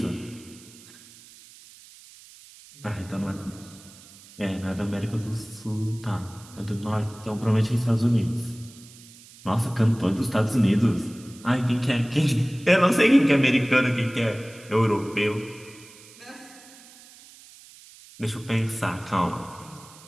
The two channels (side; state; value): right; noise; hiss, 22 dB below the sound